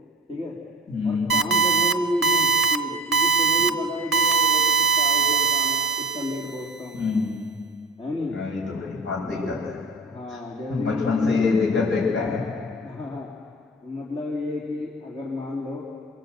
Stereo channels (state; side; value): normal; both; correlation 0.39